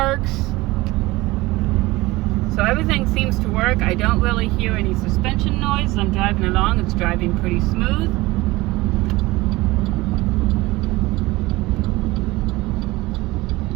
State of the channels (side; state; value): left; quieter; 20.3 dB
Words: So everything seems to work. I don't really hear any suspension noise. I'm driving along. It's driving pretty smooth.